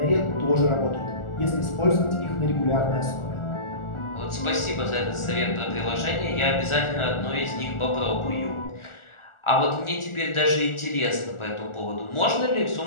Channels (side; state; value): right; late; 1.4 ms